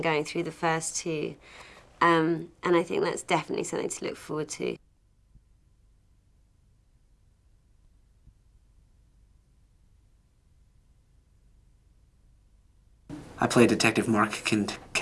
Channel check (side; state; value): both; identical; correlation 1.00